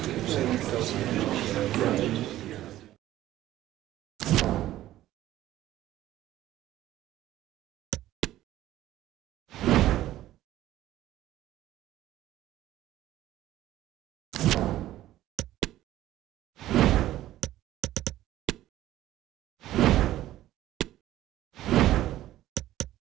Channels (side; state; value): left; quieter; 14.2 dB